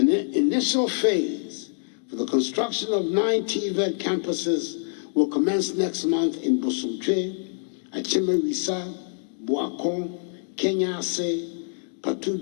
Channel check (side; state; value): right; silent; digital silence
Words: initial phase for the construction of 9 TVET campuses will commence next month in Bosumtwe, Achimewisa, Boakon, Kenyase,